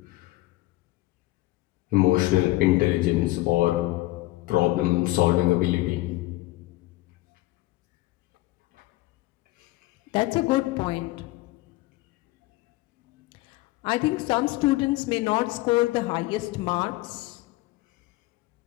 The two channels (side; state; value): right; quieter; 18.9 dB